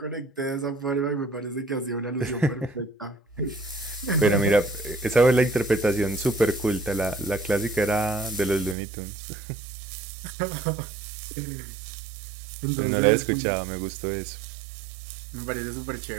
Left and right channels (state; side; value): drops out; left; at 8.8 s